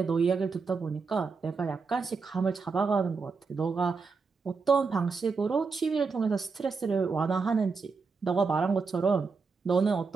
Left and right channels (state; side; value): quieter; left; 4.8 dB